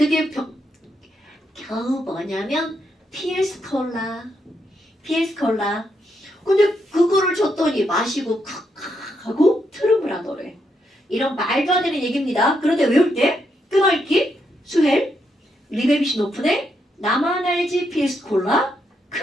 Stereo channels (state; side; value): normal; both; correlation 0.79